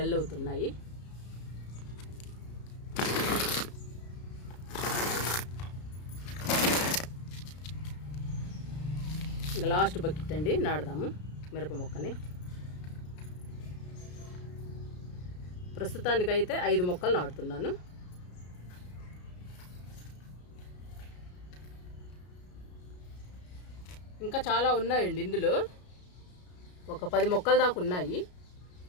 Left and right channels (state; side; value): late; right; 33 ms